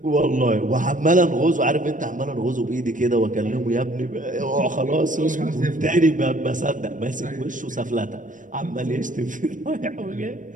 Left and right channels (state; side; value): late; left; 0.38 ms